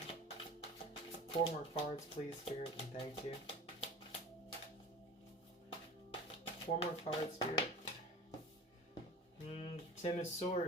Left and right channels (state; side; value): normal; both; correlation 0.36